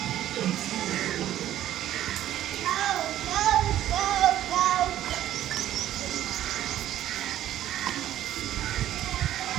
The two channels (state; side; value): quieter; left; 12.5 dB